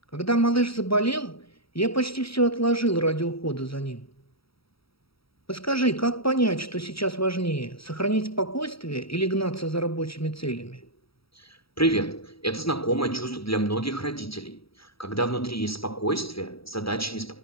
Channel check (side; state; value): right; late; 0.75 ms